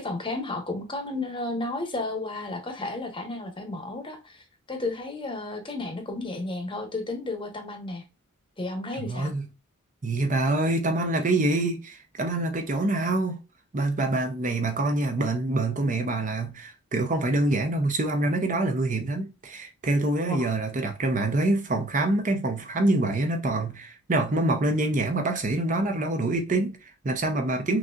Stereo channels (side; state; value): both; normal; correlation 0.54